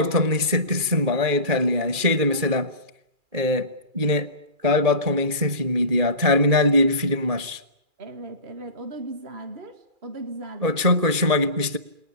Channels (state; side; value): late; left; 2.4 ms